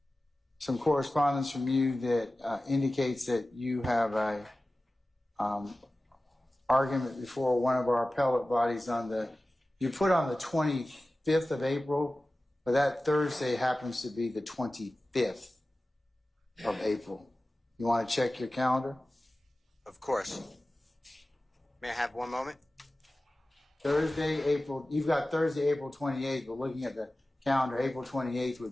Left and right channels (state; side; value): normal; both; correlation 0.96